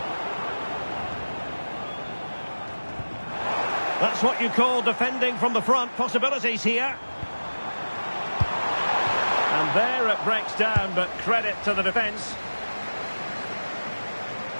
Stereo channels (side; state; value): both; inverted; correlation -1.00